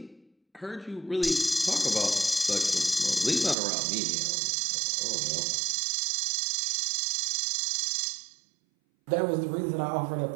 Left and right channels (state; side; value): drops out; left; at 3.6 s